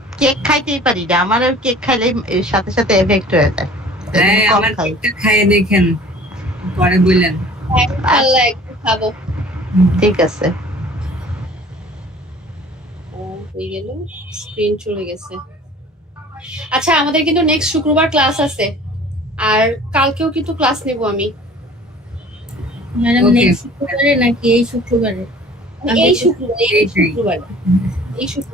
কেক খাইতেই পারি না, আমার কেক খাইলে সাথে সাথে এফেক্ট হয়ে যায়। হ্যাঁ, কম আমার খাই। কেকটা খাইয়ে দেখেন, পরে বললেন। আল্লাহ একটু খাবো। ঠিক আছে। হয়ে গেল, স্ক্রিন চলে গেছে। আচ্ছা, আমাদের কিন্তু নেক্সট শুক্রবার ক্লাস আছে, আর কালকেও কিন্তু ক্লাস নেব আমি। Madam Okay. নেক্সট শুক্রবারে নাকি এই শুক্রবারে? এই শুক্রবারে, এই এইটাই। শুক্রবারে, এই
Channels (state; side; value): normal; both; correlation 0.48